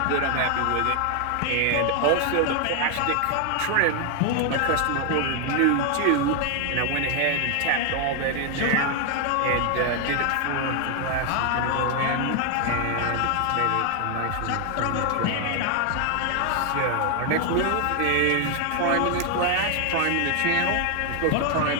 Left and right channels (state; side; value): different; both; correlation 0.01